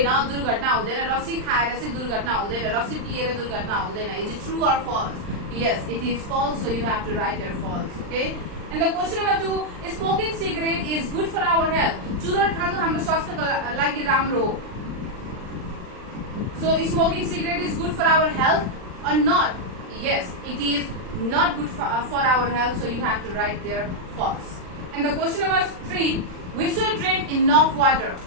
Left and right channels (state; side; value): late; left; 39 ms